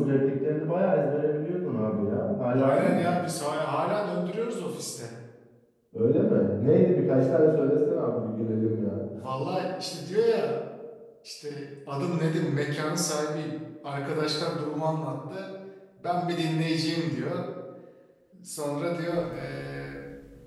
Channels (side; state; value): both; identical; correlation 1.00